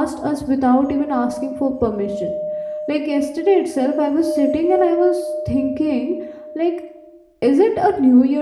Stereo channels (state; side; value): identical; both; correlation 1.00